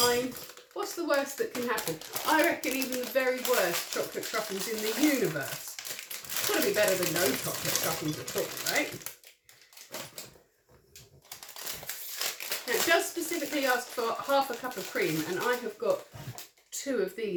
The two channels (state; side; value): identical; both; correlation 1.00